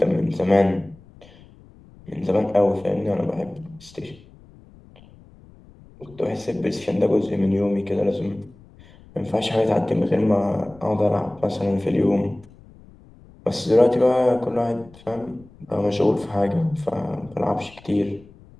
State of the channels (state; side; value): noise; left; rumble, 24 dB below the sound